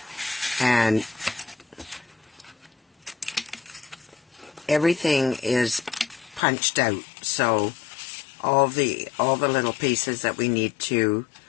And everything is punched out. So all the little pieces that we need to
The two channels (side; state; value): right; drops out; at 6.4 s